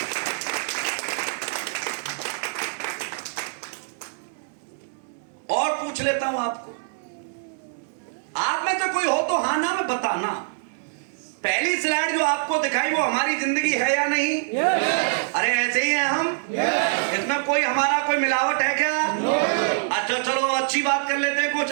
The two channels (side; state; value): left; silent; 62 dB below the other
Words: और पूछ लेता हूं आपको, आप में से कोई हो तो हाँ ना में बताना, पहली स्लाइड जो आपको दिखाई वो हमारी जिंदगी है या नहीं? अरे ऐसे ही हैं हम? इसमें कोई हमारा कोई मिलावट है क्या? अच्छा चलो अच्छी बात कर लेते हैं। कुछ